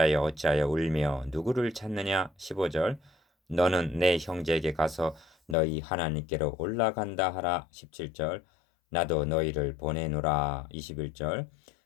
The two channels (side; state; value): right; drops out; at 5.6 s